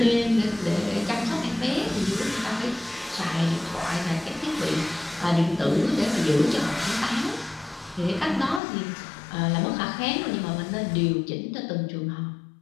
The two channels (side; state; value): right; drops out; at 8.6 s